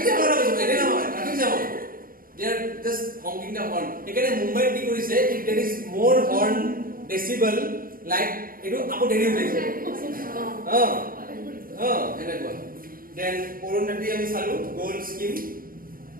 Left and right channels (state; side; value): late; left; 0.41 ms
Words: জাম বুঝিব এনে নহয় traffic jam they are just honking the horn এখানে মুম্বাই কি কৰিছে if there is more horn decibel like এটো আপো দেৰি হৈ যায় এনেকুৱা then অৰুণাটি আমি চালু গোল্ড স্কিম